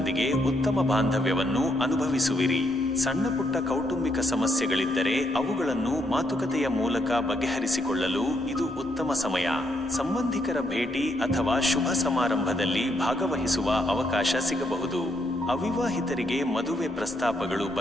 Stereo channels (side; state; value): both; normal; correlation 0.76